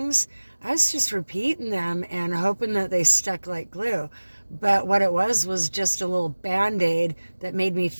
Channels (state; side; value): inverted; both; correlation -1.00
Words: I was just repeating them and hoping that they stuck like glue. But what it was just a little Band-Aid that made me